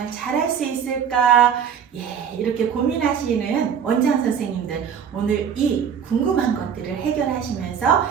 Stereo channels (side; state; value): left; quieter; 7.7 dB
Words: 잘할 수 있을까? 이렇게 고민하시는 원장 선생님들, 오늘 이 궁금한 것들을 해결하시면서